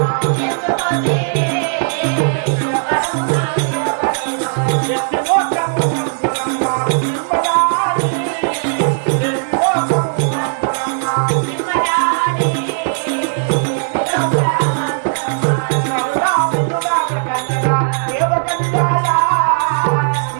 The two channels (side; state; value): left; silent; digital silence